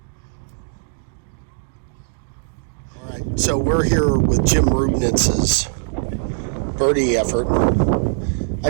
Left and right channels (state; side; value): silent; left; digital silence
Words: All right, so we're here with Jim Rubnitz's birdie effort.